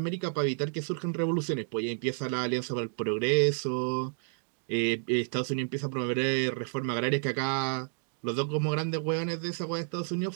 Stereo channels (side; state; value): left; silent; digital silence